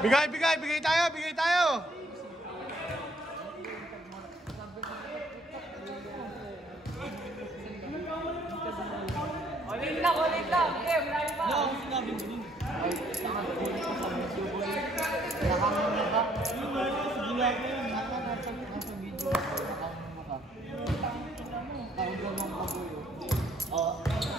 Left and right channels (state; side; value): normal; both; correlation 0.65